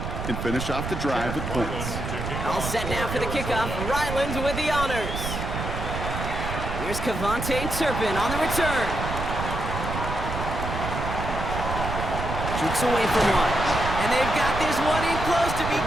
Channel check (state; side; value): noise; right; rumble, 5 dB below the sound